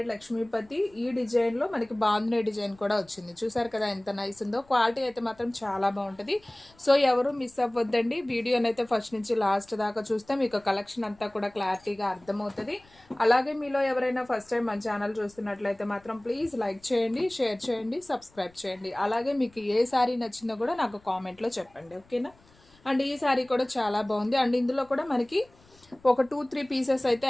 లక్ష్మీపతి. ఈ డిజైన్లో మనకి బాందిని డిజైన్ కూడా వచ్చింది. చూసారు కదా ఎంత నైస్ ఉందో. క్వాలిటీ అయితే మాత్రం చాలా బాగుంటుంది. సో ఎవరు మిస్ అవ్వద్దండి. వీడియోనైతే ఫస్ట్ నుంచి లాస్ట్ దాకా చూస్తే మీకు కలెక్షన్ అంతా కూడా క్లారిటీగా అర్థమవుతుంది. అలాగే మీలో ఎవరైనా ఫస్ట్ టైం మన ఛానల్ చూస్తున్నట్లయితే మాత్రం ప్లీజ్ లైక్ చేయండి, షేర్ చేయండి, సబ్స్క్రైబ్ చేయండి. అలాగే మీకు ఏ శారీ నచ్చిందో కూడా నాకు కామెంట్లో చెప్పండి. ఓకేనా. అండ్ ఈ శారీ కూడా చాలా బాగుంది. అండ్ ఇందులో కూడా మనకి ఒక 2-3 పీసెస్ అయితే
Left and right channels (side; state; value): left; noise; rumble, 29 dB below the sound